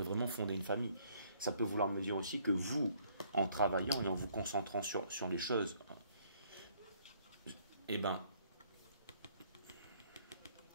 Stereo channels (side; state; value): both; inverted; correlation -0.64